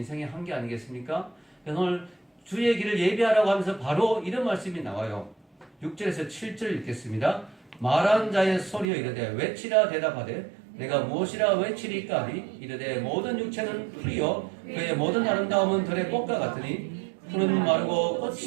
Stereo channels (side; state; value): left; drops out; at 8.8 s